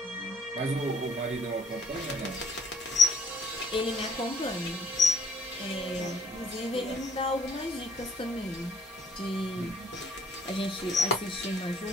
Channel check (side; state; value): both; normal; correlation 0.62